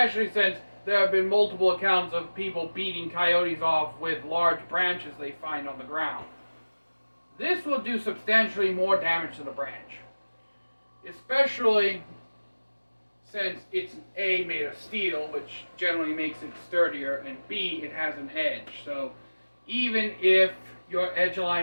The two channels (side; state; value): both; inverted; correlation -1.00